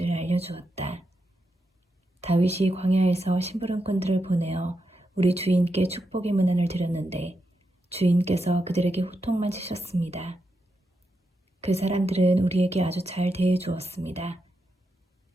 알려주었다. 다윗이 광야에서 심부름꾼들을 보내어 우리 주인께 축복의 문안을 드렸는데 주인께서 그들에게 호통만 치셨습니다. 그 사람들은 우리에게 아주 잘 대해주었습니다.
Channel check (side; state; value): both; normal; correlation 0.85